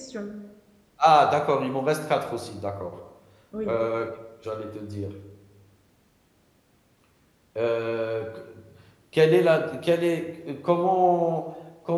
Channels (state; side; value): identical; both; correlation 1.00